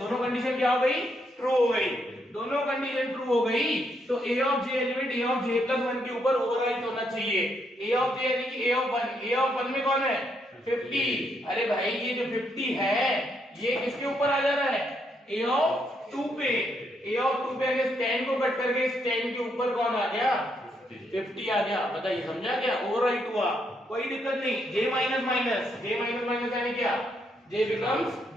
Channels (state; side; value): normal; both; correlation 0.76